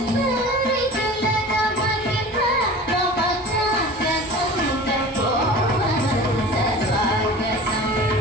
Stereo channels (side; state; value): both; normal; correlation 0.38